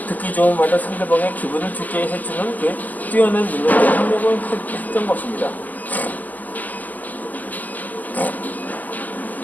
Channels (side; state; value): right; late; 0.082 ms